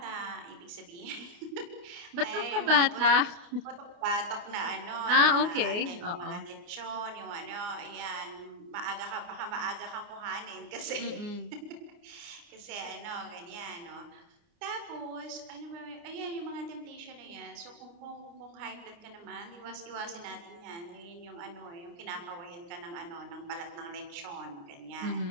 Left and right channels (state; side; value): late; left; 29 ms